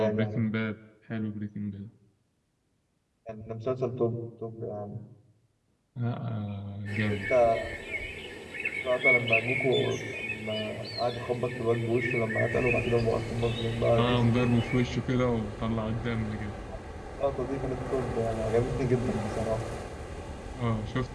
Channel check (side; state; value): both; identical; correlation 1.00